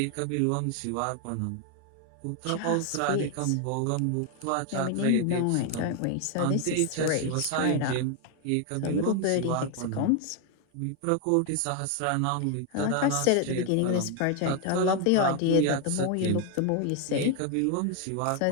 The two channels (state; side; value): different; both; correlation 0.01